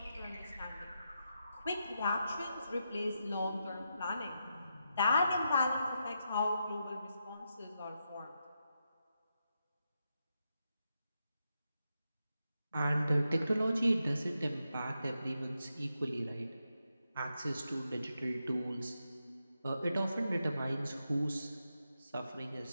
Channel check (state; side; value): inverted; both; correlation -0.85